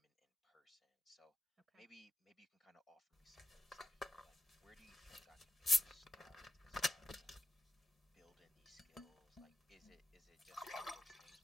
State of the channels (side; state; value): both; normal; correlation 0.83